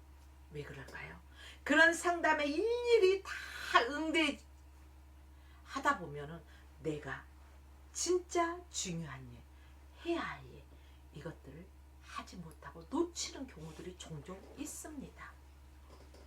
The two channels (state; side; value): identical; both; correlation 1.00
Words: 왜 그럴까요? 그런 상담에 일일이 다 응대하다 보면은 내가 진짜 중요한 일, 해야 할 일, 이것들을 하지 못하고 놓치는 경우들이 종종 있습니다.